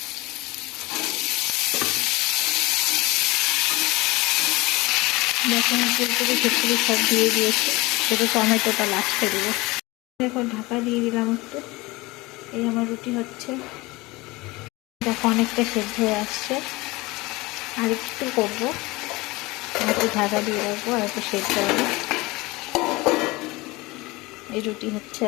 যখন ফুলকপি ফুলকপি সব দিয়ে দিয়েছি, শুধু টমেটোটা লাস্টে দেবো। দেখো ঢাকা দিয়ে দিলাম একটু। এই আমার রুটি হচ্ছে, দেখো অনেকটা সেদ্ধ হয়ে আসছে। আর একটু করবো, একটু ঢাকা দিয়ে রাখবো আর একটু সেদ্ধ হবে। এই রুটি হচ্ছে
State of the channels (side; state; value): right; quieter; 22.2 dB